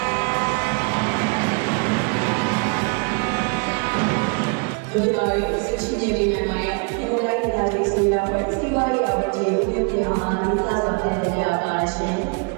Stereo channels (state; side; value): quieter; left; 35.3 dB